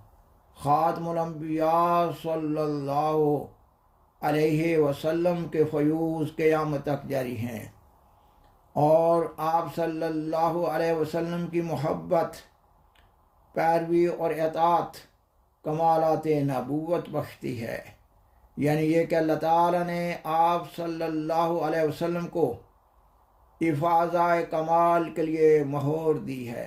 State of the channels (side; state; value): both; identical; correlation 1.00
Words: خاتم الانبیاء صلی اللہ علیہ وسلم کے فیوز قیامت تک جاری ہیں، اور آپ صلی اللہ علیہ وسلم کی محبت، پیروی اور اطاعت کمالات نبوت بخشتی ہے، یعنی یہ کہ اللہ تعالیٰ نے آپ صلی اللہ علیہ وسلم کو افاضہ کمال کے لیے مہور دی